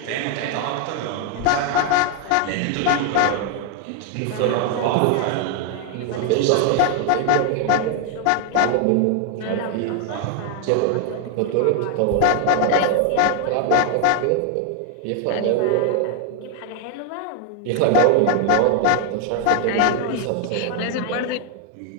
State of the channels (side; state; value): both; different; correlation 0.00